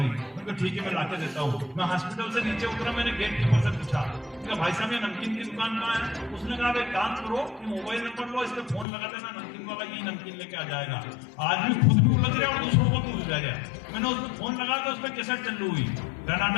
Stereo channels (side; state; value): right; drops out; at 8.8 s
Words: उनको ठीक है मैं लाके देता हूँ। मैं हॉस्पिटल से नीचे उतरा, मैंने गेट कीपर से पूछा भाई साहब ये नमकीन की दुकान कहाँ है? उसने कहा एक काम करो, मोबाइल नंबर लो, इस पे फोन लगा देना, नमकीन वाला यही नमकीन लेके आ जाएगा। आदमी खुद भी उलझ रहा और दूसरों को भी उलझा गया। मैंने उस पर फोन लगा तो उस पर कैसेट चालू हुई,